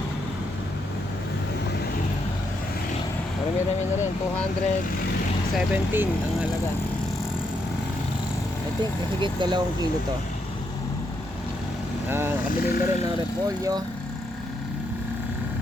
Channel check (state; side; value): normal; both; correlation 0.78